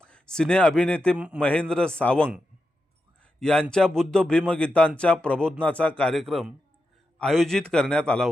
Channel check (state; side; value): normal; both; correlation 0.88